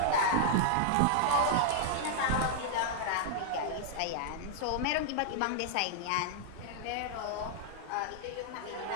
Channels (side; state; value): both; different; correlation -0.01